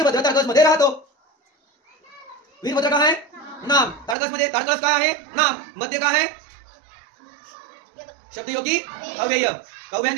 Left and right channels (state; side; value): drops out; left; at 4.2 s